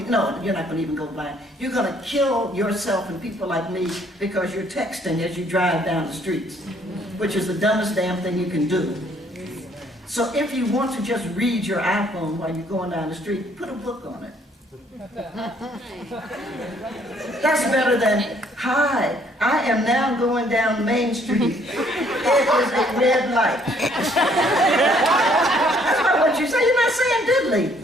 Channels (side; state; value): both; normal; correlation 0.64